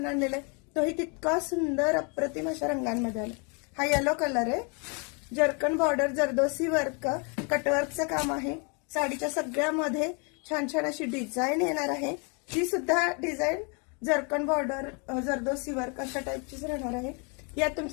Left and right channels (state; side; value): quieter; right; 34.7 dB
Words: आणलेला आहे तोही तितका सुंदर अप्रतिम अशा रंगांमध्ये आला. हा येलो कलर आहे. जर्कन बॉर्डर जरदोसी वर्क कटवर्कचं काम आहे. साडीच्या सगळ्यामध्ये छान छान अशी डिझाईन येणार आहे. ती सुद्धा design zircon border zardozi work अशा टाईपचीच राहणार आहे. यात